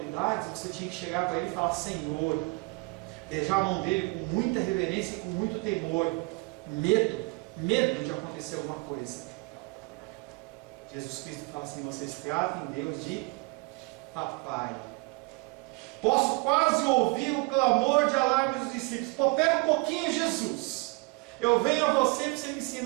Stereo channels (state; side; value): quieter; left; 27.3 dB